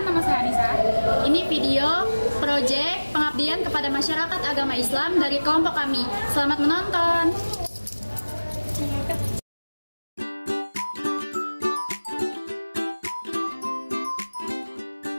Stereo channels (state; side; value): inverted; both; correlation -1.00